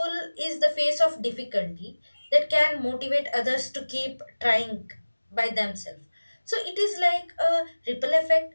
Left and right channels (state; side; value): inverted; both; correlation -1.00